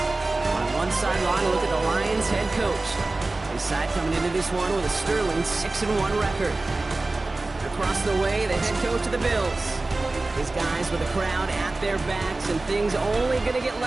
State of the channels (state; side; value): quieter; left; 3.1 dB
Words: On one sideline, look at the Lions head coach. His side coming into this one with a sterling 6-1 record. Across the way, the head coach of the Bills. His guys with the crowd at their backs, and things only going to get